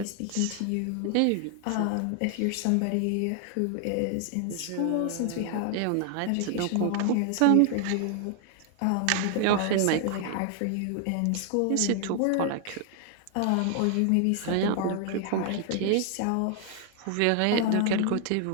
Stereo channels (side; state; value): both; different; correlation 0.00